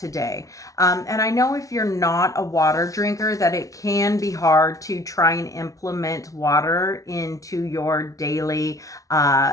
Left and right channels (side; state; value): right; late; 0.17 ms